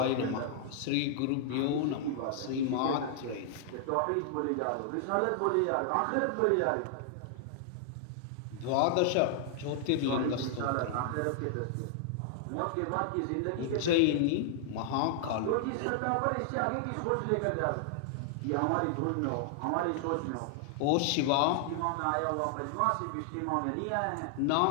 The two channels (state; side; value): different; both; correlation -0.01